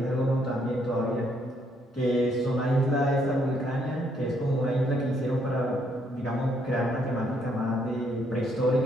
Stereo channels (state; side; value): normal; both; correlation 0.71